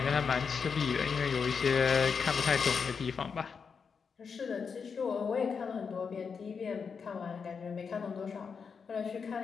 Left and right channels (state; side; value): quieter; right; 5.9 dB